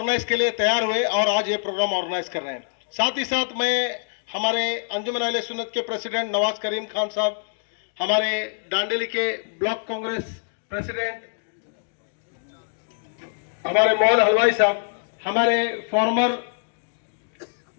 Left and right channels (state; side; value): silent; right; digital silence